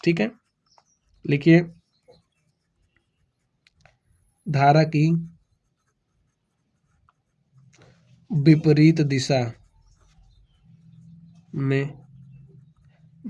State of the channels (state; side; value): identical; both; correlation 1.00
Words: ठीक है। लिखिए धारा की विपरीत दिशा में